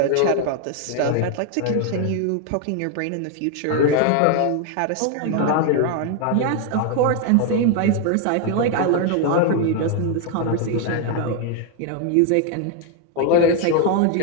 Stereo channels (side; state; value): both; different; correlation 0.01